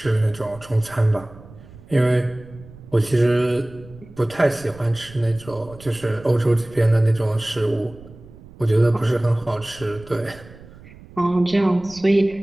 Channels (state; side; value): noise; right; rumble, 20 dB below the sound